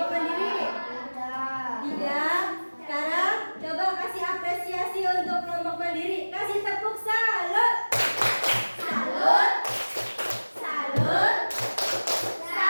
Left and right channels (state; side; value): inverted; both; correlation -1.00